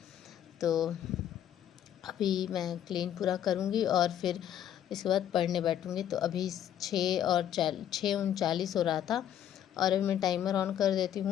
तो अभी मैं क्लीन पूरा करूँगी और फिर इसके बाद पढ़ने बैठूँगी। तो अभी 6:39 हो रहा था और अभी मैं टाइमर ऑन कर देती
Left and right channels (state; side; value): quieter; right; 10.5 dB